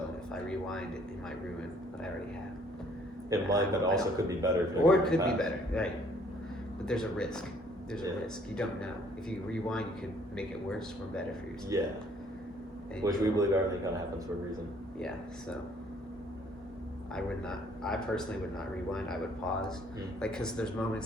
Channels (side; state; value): both; normal; correlation 0.61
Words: if I rewind, it might ruin what I already have. It might, but also could be better. Or it could be better, right? But there's a risk. There's a risk. You don't know. If you rewind, you could make it worse or better for yourself. Yeah. Which we believe everything kind of happens for a reason. Yeah. So I personally would not rewind. I would pause, because there's